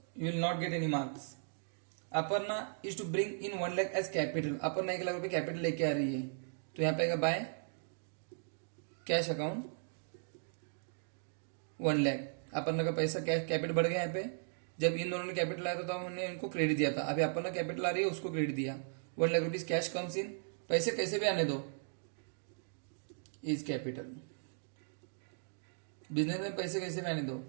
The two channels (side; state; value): left; silent; digital silence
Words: you will not get any marks. Aparna is to bring in 1 lakh as capital. Aparna 1 lakh रुपए capital लेके आ रही है तो यहाँ पे आएगा by cash account 1 lakh. Aparna का पैसा कैश कैपिटल बढ़ गया यहाँ पे. जब इन दोनों ने कैपिटल लाया था तो हमने इनको क्रेडिट दिया था. अभी अपर्णा कैपिटल आ रही है उसको क्रेडिट दिया 1 lakh rupees. Cash comes in. पैसे कैसे भी आने दो इज कैपिटल. बिजनेस में पैसे कैसे भी आने दो